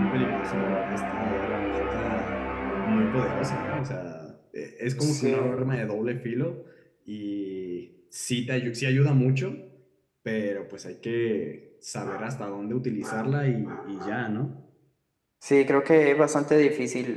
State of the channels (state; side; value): identical; both; correlation 1.00